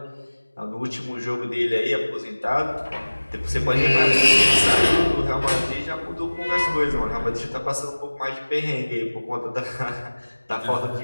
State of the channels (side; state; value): both; inverted; correlation -1.00